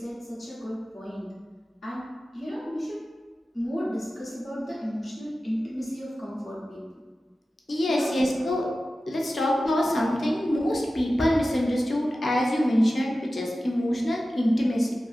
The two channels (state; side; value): normal; both; correlation 0.94